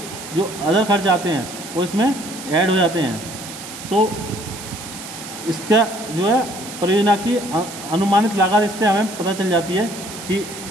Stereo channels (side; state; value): right; noise; hiss, 12 dB below the sound